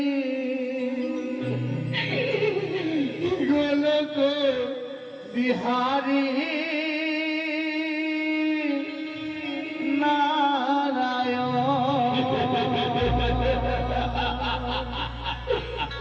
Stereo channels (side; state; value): both; identical; correlation 1.00